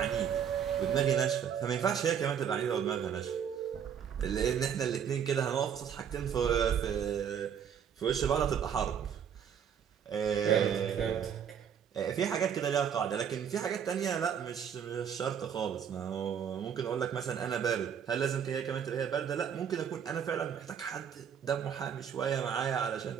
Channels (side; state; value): left; quieter; 8.1 dB